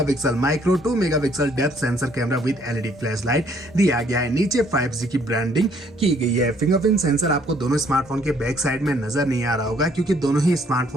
micro, 2 megapixel depth sensor camera with LED flash light दिया गया है। नीचे 5G की ब्रांडिंग की गई है। फिंगरप्रिंट सेंसर आपको दोनों स्मार्टफोन के बैक साइड में नजर नहीं आ रहा होगा क्योंकि दोनों ही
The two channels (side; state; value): both; normal; correlation 0.64